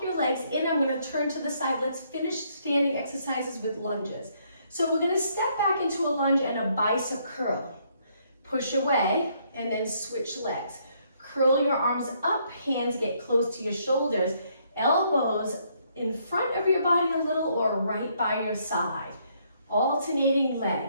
your legs in. I'm going to turn to the side. Let's finish standing exercises with lunges. So we're going to step back into a lunge and a bicep curl. Push away, and then switch legs. Curl your arms up, hands get close to your shoulders, elbows in front of your body a little or right by your side. Alternating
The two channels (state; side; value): inverted; both; correlation -0.70